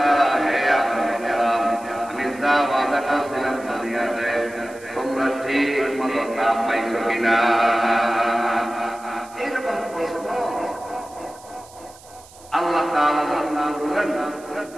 হে না পাইছো কিনা? এইরকম প্রশ্ন আল্লাহ তাআলা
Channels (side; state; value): right; noise; hiss, 23 dB below the sound